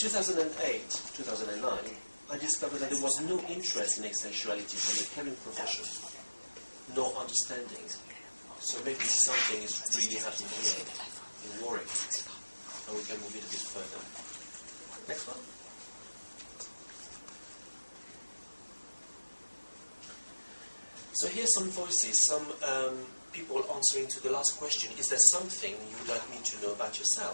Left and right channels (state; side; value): inverted; both; correlation -1.00